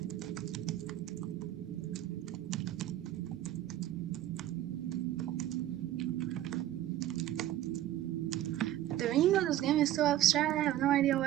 The meaning of this game is so abstract, I have no idea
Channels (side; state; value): left; quieter; 13.1 dB